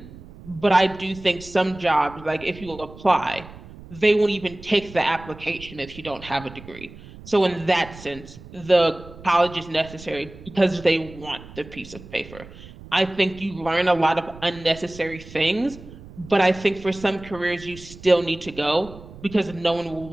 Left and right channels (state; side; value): noise; right; rumble, 17 dB below the sound